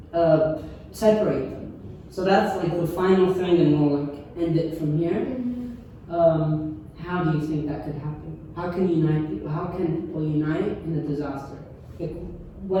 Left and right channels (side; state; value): both; identical; correlation 1.00